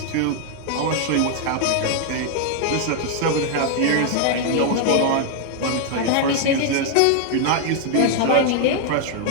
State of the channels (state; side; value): different; both; correlation 0.00